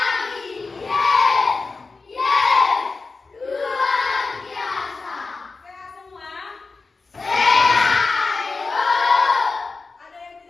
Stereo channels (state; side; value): quieter; right; 4.1 dB